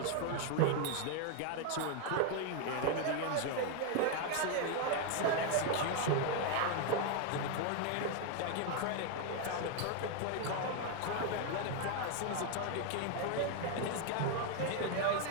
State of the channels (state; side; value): different; both; correlation 0.01